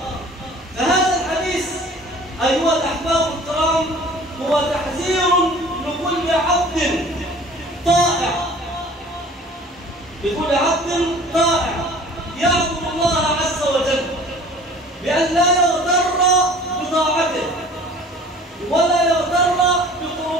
فهذا الحديث أيها الأحباب الكرام هو تحذير لكل عبد طائع، لكل عبد طائع يعبد الله عز وجل بأن لا يغتر بطاعته ولا يغتر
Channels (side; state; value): both; normal; correlation 0.47